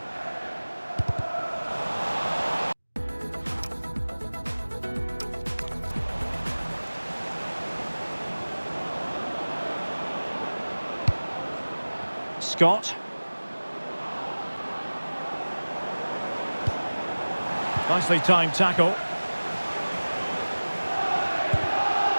Scott. Nicely timed tackle.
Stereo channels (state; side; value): inverted; both; correlation -1.00